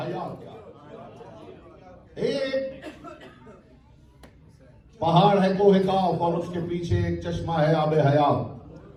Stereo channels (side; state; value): both; identical; correlation 1.00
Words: क्या है। एक पहाड़ है कोहे काफ और उसके पीछे एक चश्मा है आबे हयात।